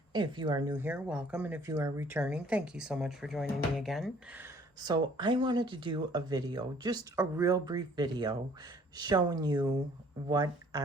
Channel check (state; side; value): normal; both; correlation 0.57